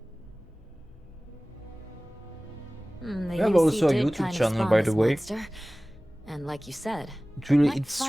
The We have UC also a did YouTube kind of channel, spawn by this the way. monster. And like you said, It's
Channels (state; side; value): normal; both; correlation 0.98